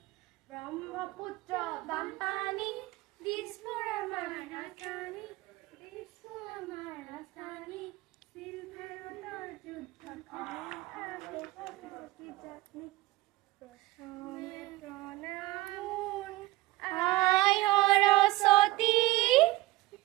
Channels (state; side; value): quieter; left; 18.6 dB